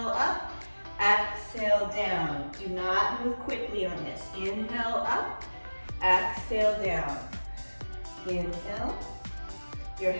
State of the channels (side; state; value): both; inverted; correlation -1.00